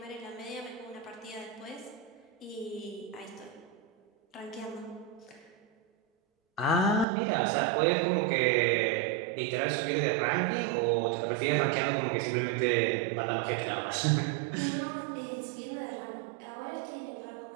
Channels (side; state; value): left; drops out; at 7.1 s